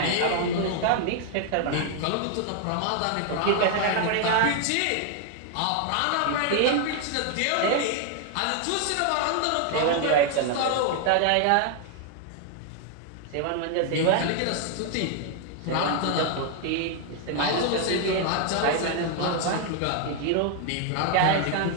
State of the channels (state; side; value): different; both; correlation 0.00